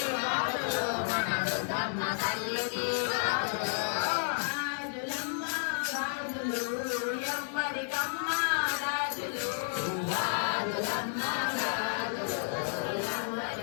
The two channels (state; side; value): silent; right; 57 dB below the other